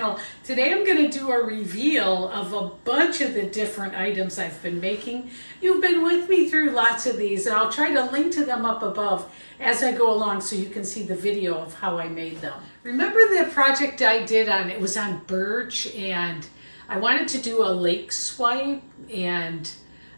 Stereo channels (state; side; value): inverted; both; correlation -1.00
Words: Today I'm going to do a reveal of a bunch of the different items I've been making. You've been with me through lots of these, and I'll try to link to them up above as I go along so you can see the video of how I made them. Remember the project I did it was on birch, and I wanted to do a lake swipe, and